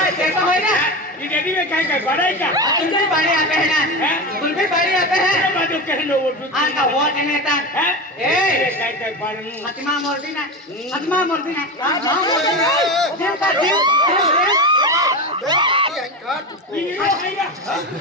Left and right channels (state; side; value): normal; both; correlation 0.22